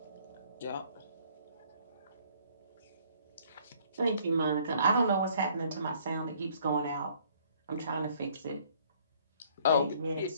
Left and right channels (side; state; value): both; inverted; correlation -0.60